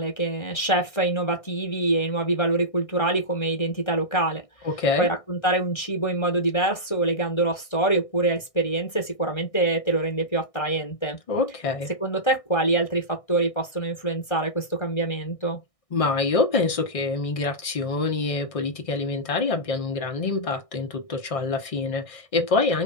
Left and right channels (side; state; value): right; late; 1.6 ms